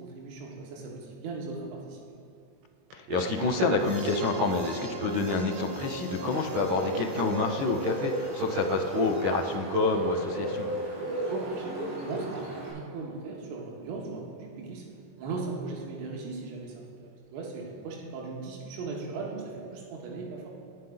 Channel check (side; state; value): left; late; 22 ms